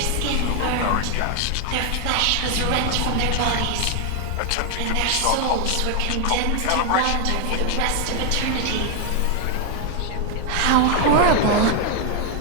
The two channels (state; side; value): different; both; correlation 0.01